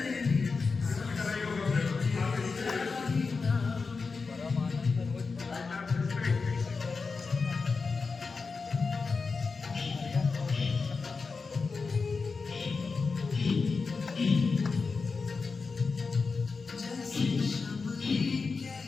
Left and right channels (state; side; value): quieter; right; 4.6 dB